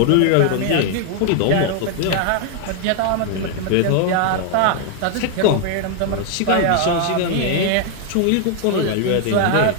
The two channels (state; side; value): different; both; correlation 0.00